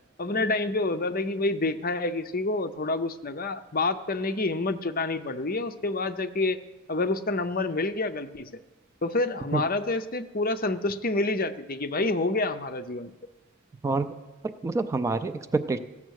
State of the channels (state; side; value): normal; both; correlation 0.22